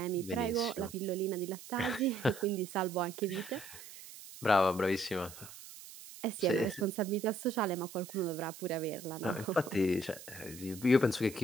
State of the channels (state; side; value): noise; right; hiss, 15 dB below the sound